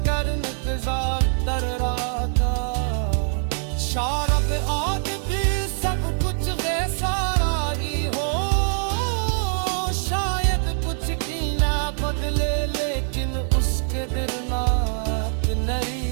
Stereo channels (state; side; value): silent; left; 57 dB below the other